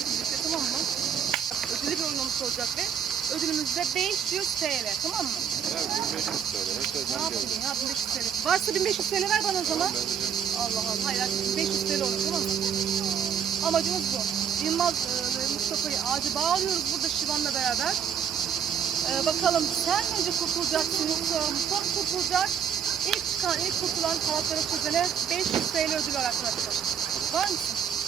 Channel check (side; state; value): left; quieter; 7.7 dB